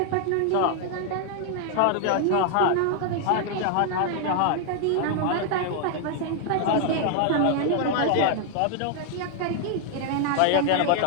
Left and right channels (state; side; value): different; both; correlation 0.00